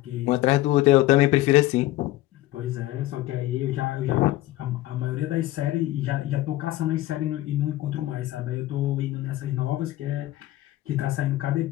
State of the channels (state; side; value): quieter; right; 16.1 dB